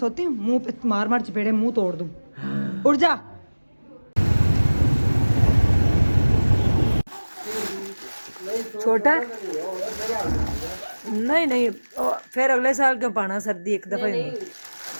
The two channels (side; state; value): both; inverted; correlation -1.00